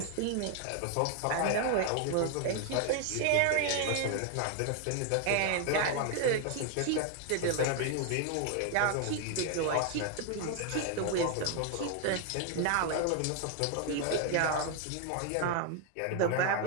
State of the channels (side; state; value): both; different; correlation 0.00